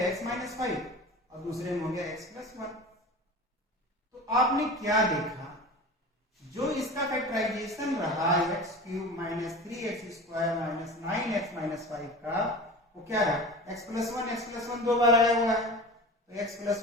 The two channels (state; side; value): normal; both; correlation 0.34